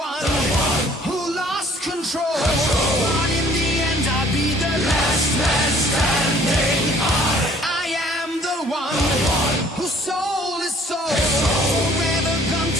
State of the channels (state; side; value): normal; both; correlation 0.57